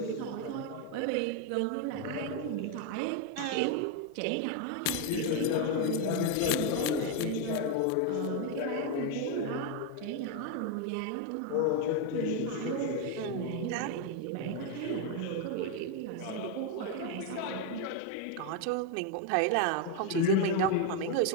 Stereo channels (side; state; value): both; different; correlation 0.01